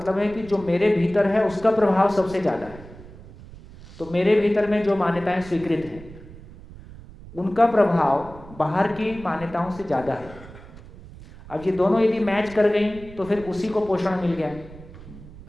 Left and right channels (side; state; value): right; noise; rumble, 18 dB below the sound